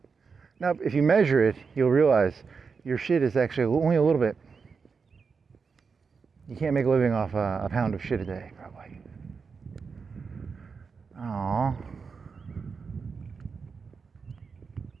Now, if you measure it, you'll realize your shit is actually only a little bit. You can't make a living off a pound of shit a day, probably. Aww.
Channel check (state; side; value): quieter; left; 5.3 dB